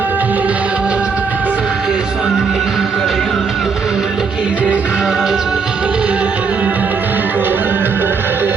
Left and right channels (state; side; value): quieter; left; 5.3 dB